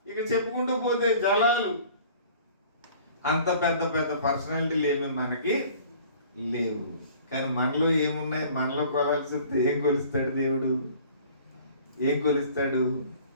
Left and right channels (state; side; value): inverted; both; correlation -0.50